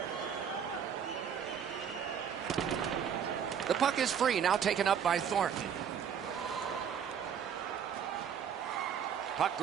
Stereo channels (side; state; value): left; quieter; 7.9 dB